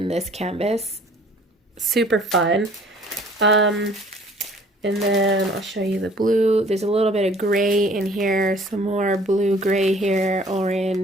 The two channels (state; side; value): normal; both; correlation 0.54